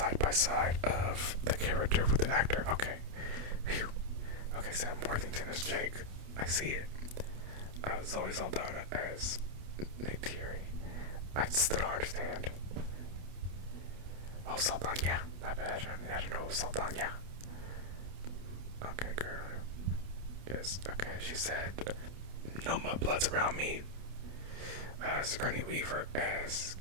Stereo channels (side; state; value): left; late; 28 ms